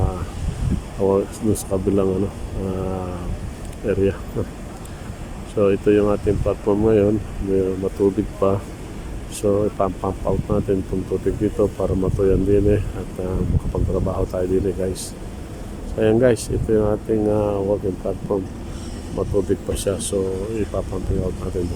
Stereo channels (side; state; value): both; identical; correlation 1.00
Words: area. So ito yung ating platform ngayon, may matubig pa. So ipump out natin itong tubig dito para matuyan din at makapagtrabaho tayo din guys. So ayan guys, ito yung ating working platform, matubig pa siya, so ipapumping out natin ito